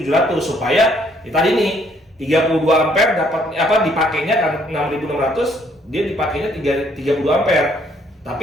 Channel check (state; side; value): normal; both; correlation 0.66